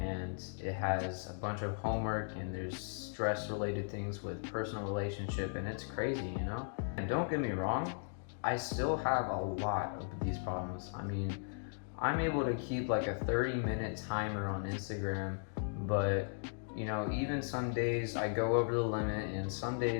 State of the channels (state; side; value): silent; right; digital silence